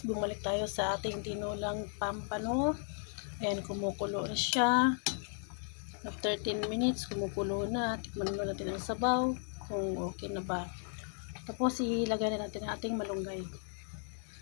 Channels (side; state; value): right; silent; 54 dB below the other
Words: bumalik tayo sa ating tinulang pampano. Ayan, kumukulo na siya. After 10 minutes, kumukulo na. Tikman na natin ang sabaw kung okay na ba. Tapos ilagay na natin ang ating malunggay.